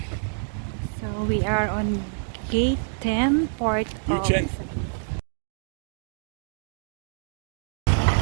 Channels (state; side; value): silent; left; digital silence